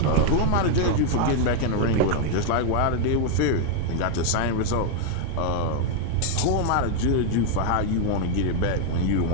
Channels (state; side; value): different; both; correlation 0.00